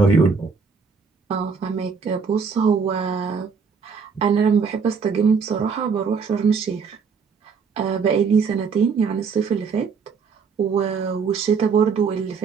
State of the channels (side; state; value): left; quieter; 5.6 dB